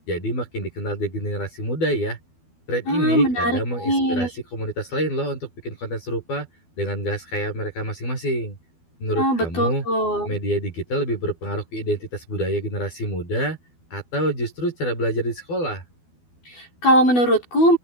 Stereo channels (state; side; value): late; right; 12 ms